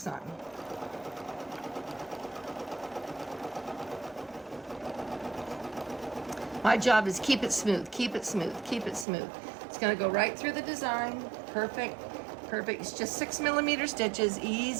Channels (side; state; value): left; drops out; at 9.1 s